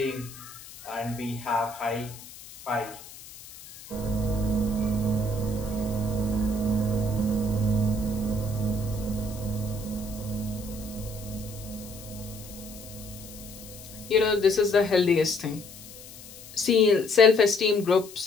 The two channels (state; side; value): noise; left; hiss, 17 dB below the sound